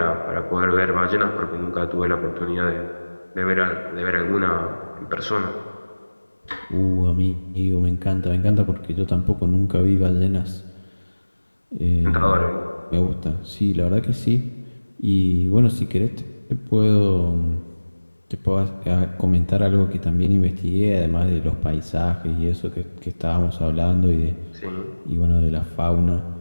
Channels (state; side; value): inverted; both; correlation -1.00